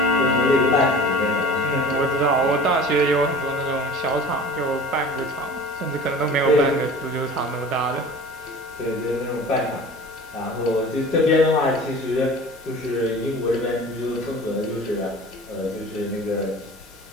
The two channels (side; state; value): both; normal; correlation 0.41